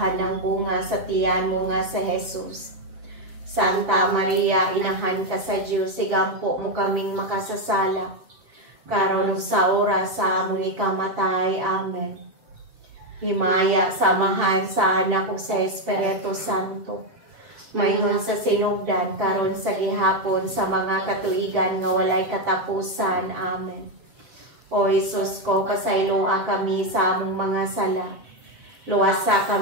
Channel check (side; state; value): left; late; 7.3 ms